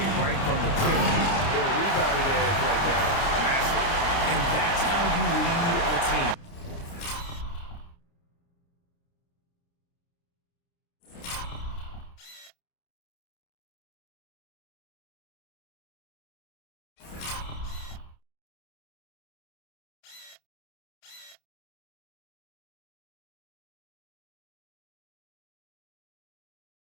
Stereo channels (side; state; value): right; late; 29 ms